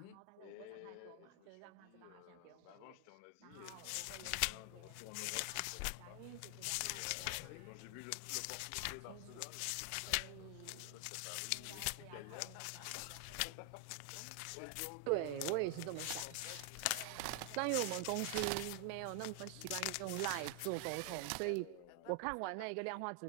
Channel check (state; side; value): different; both; correlation 0.00